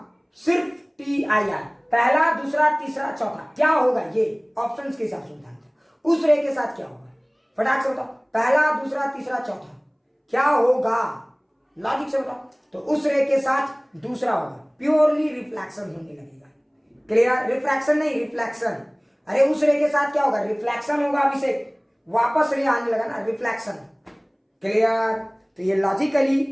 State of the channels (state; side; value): identical; both; correlation 1.00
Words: सिर्फ TIR, पहला, दूसरा, तीसरा, चौथा, क्या होगा? ये ऑप्शंस के हिसाब से बताना। उस रे के साथ क्या होगा? फटाक से बताओ, पहला, दूसरा, तीसरा, चौथा, क्या होगा? लॉजिक से बताओ। तो उस रे के साथ दूसरा होगा, प्योरली रिफ्लेक्शन होने लगेगा। क्लियर? रिफ्रैक्शन नहीं, रिफ्लेक्शन। अरे उस रे के साथ क्या होगा? रिफ्लेक्शन होगा। अभिषेक वापस रे आने लगा ना, रिफ्लेक्शन। क्लियर? तो ये